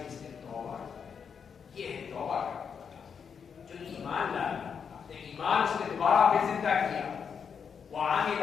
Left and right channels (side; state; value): right; quieter; 6.7 dB